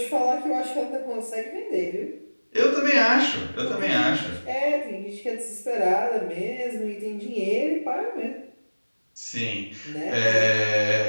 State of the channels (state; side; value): inverted; both; correlation -1.00